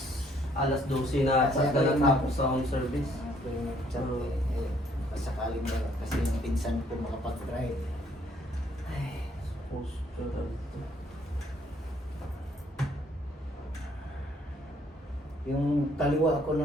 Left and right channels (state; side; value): normal; both; correlation 0.65